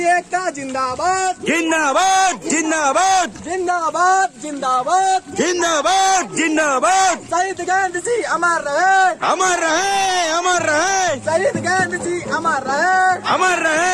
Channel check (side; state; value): both; identical; correlation 1.00